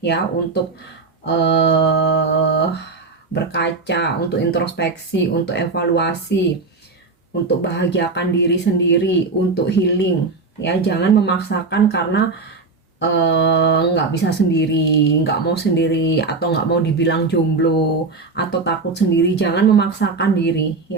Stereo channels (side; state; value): left; quieter; 4.0 dB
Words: ya, untuk berkaca, untuk introspeksi, untuk evaluasi, untuk bahagiakan diri sendiri, untuk healing ya. Jangan memaksakan karena nggak bisa sendiri, nggak mau sendiri, atau nggak mau dibilang jomblo, atau takut sendiri. Jangan memaksakan diri